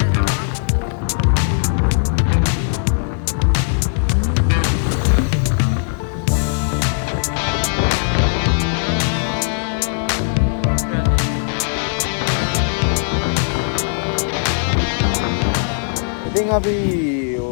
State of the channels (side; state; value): right; silent; digital silence